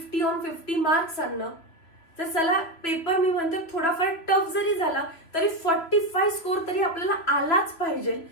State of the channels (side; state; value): right; late; 3.1 ms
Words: on 50 मार्क्स आणणं. तर चला पेपर मी म्हणते थोडाफार टफ जरी झाला तरी 45 स्कोर तरी आपल्याला आलाच पाहिजे.